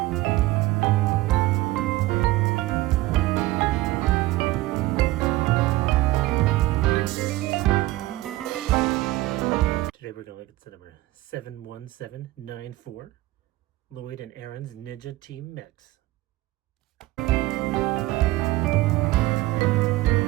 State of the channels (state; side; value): quieter; left; 18.1 dB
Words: Today we're going to look at set number 71794, Lloyd and Arin's Ninja Team Mechs.